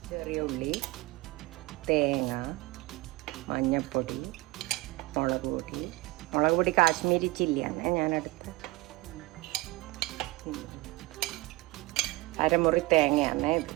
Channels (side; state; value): left; quieter; 21.4 dB